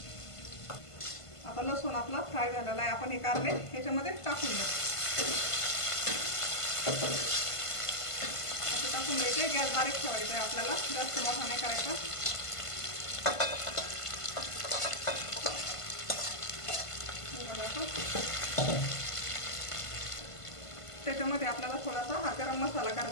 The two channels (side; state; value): right; late; 1.5 ms